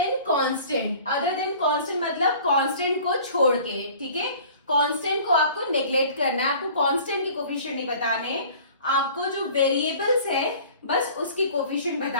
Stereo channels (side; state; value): both; inverted; correlation -0.47